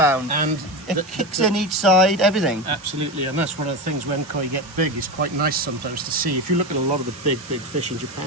And It kicks in each side, everything. Absolutely, and that's one of the things when koi get big. It's quite nice sometimes to see. If you look at a lot of the big fish in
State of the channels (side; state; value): both; normal; correlation 0.20